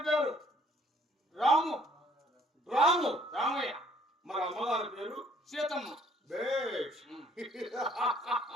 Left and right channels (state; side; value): normal; both; correlation 0.61